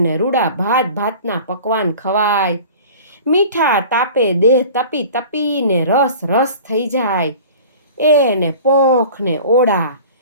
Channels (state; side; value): inverted; both; correlation -0.42